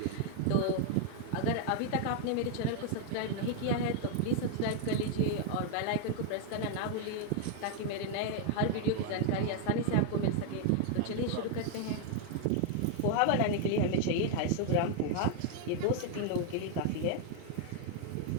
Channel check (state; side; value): different; both; correlation 0.00